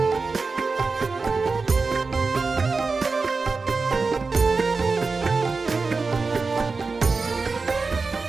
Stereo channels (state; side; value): quieter; left; 4.2 dB